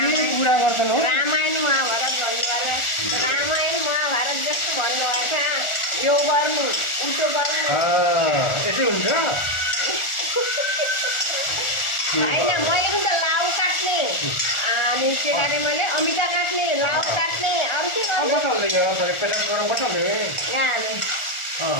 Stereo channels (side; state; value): right; late; 1.4 ms